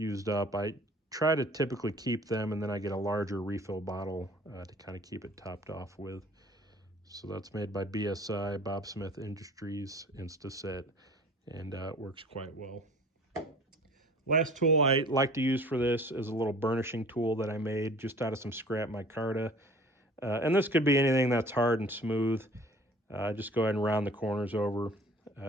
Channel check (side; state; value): both; normal; correlation 0.48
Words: up, I try to typically keep them, and then I get a larger refill bottle to kind of keep it topped off with. So that's made by BSI, Bob Smith Industries, Insta-Set, and it works quite well. Last tool I like to use for this is a little burnishing tool that I made just out of some scrap micarta. And this could be anything that's hard and smooth. Just go ahead and round the corners over.